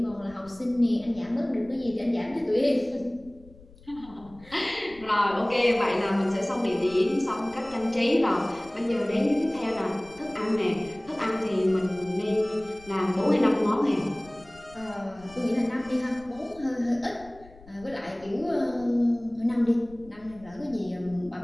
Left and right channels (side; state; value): left; noise; rumble, 23 dB below the sound